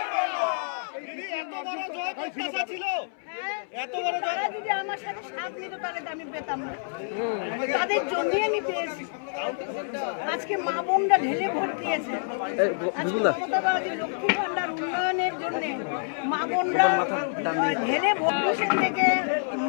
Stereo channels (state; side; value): silent; right; 60 dB below the other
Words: দিদি এত বড় জয় প্রত্যাশা ছিল, এত বড় জয় যদি আমার সাথে সাথ নিতে পারে আমি পেতাম না। তাদের জমিয়ে নিতে আজকে মা বোনরা ঢেলে ভোট দিয়েছে। লক্ষ্মী ভান্ডার উন্নয়নের জন্য মা বোনরা ঢেলে ভোট থেকে